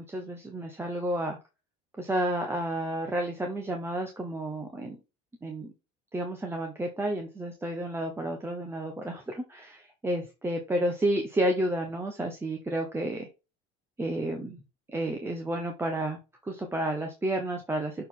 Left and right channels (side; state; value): both; normal; correlation 0.66